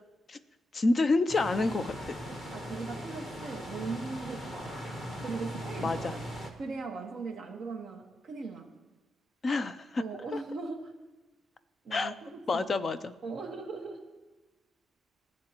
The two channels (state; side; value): normal; both; correlation 0.87